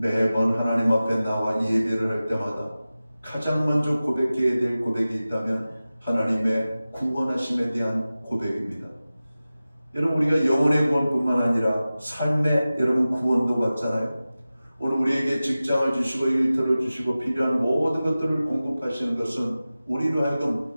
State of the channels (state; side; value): inverted; both; correlation -0.96